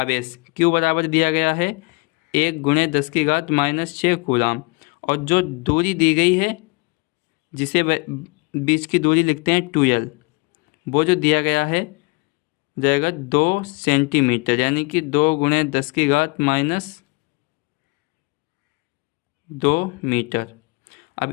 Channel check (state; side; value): quieter; right; 28.2 dB